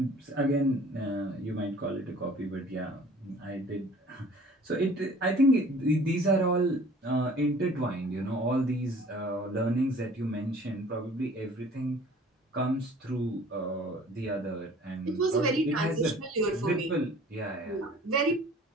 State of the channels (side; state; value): both; normal; correlation 0.50